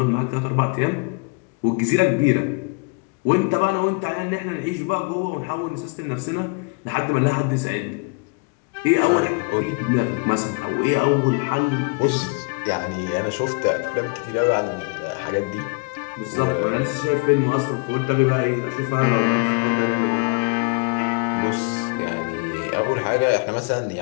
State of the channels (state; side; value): quieter; right; 32.3 dB